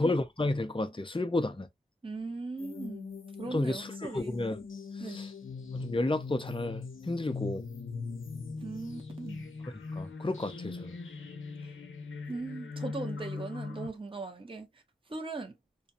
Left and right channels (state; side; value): normal; both; correlation 0.84